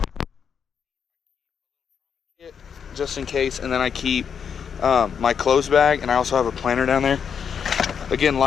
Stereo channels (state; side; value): quieter; right; 7.1 dB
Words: Just in case, and then I keep my clothes bag, and I also have a planner down there. Again,